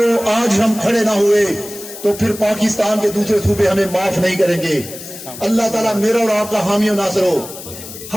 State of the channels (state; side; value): noise; left; hiss, 13 dB below the sound